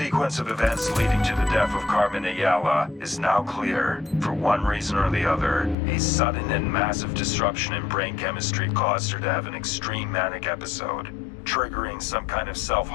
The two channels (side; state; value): right; drops out; at 5.8 s